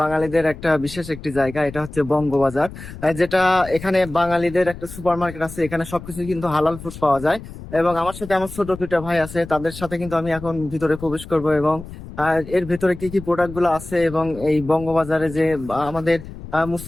বাঙালিদের একটা বিশেষ একটি জায়গা, এটা হচ্ছে বঙ্গবাজার। যেটা এখানে বাঙালিদের একটা সুপার মার্কেট আছে, এখানে সবকিছু কিন্তু হালাল ফুড পাওয়া যায়। এবং আমার সাথে আমার ছোট দুইটা ভাই আছে, তাদের সাথে কিন্তু আমি এখন ভিতরে প্রবেশ করব এবং এর ভিতরে কি কি প্রোডাক্ট গুলো আছে এবং এই বঙ্গবাজারে যে আমাদের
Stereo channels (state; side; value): noise; left; rumble, 14 dB below the sound